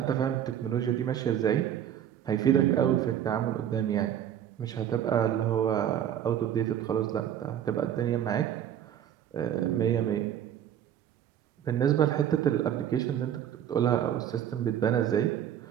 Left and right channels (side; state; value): left; quieter; 10.0 dB